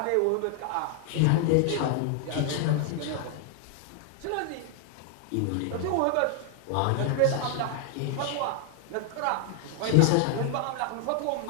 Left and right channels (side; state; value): both; different; correlation 0.00